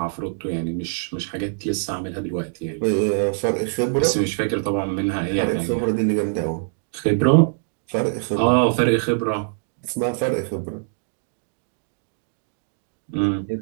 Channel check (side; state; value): left; silent; digital silence